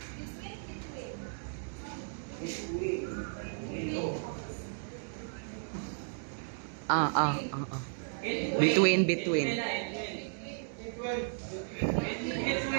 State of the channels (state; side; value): silent; left; digital silence